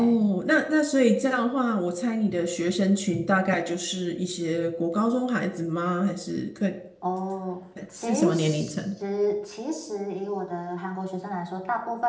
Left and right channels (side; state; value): both; identical; correlation 1.00